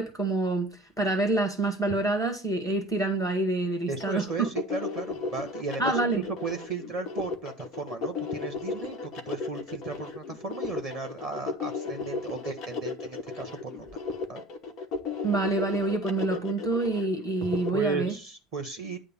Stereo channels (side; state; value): both; normal; correlation 0.42